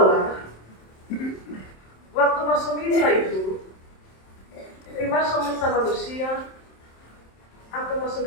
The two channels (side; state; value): right; late; 27 ms